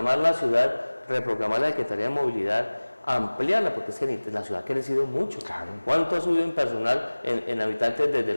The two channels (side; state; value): both; inverted; correlation -1.00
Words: la ciudad, reprogramar la Secretaría de Movilidad, ampliarla, porque es que la ciudad ha crecido mucho. Claro. ¿Cuánto ha subido en personal, en habitantes desde